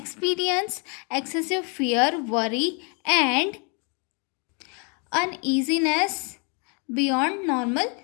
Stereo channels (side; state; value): right; quieter; 36.1 dB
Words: excessive fear, worry and uneasiness beyond normal